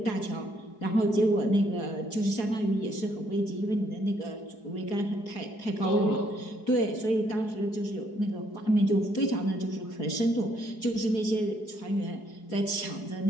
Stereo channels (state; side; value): late; right; 4.7 ms